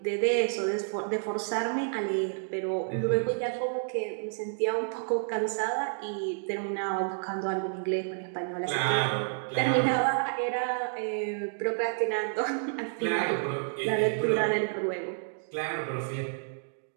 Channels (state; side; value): silent; left; digital silence